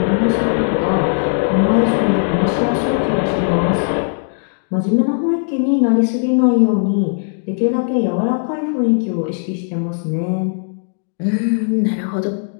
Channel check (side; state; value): right; silent; digital silence